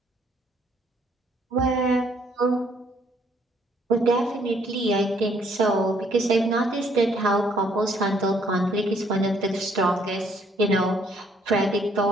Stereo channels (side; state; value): both; normal; correlation 0.67